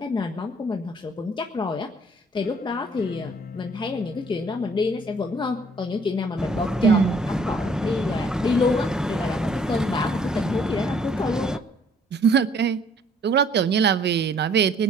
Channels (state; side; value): normal; both; correlation 0.60